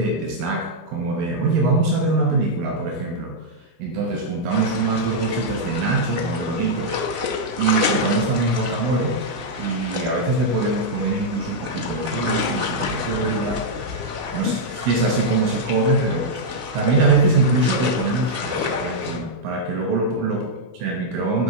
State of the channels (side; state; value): left; late; 16 ms